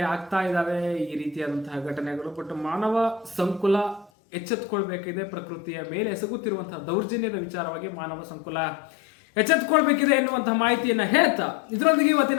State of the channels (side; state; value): right; drops out; at 4.1 s